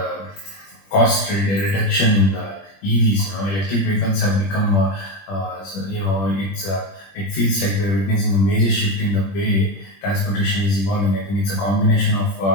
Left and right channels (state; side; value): late; right; 21 ms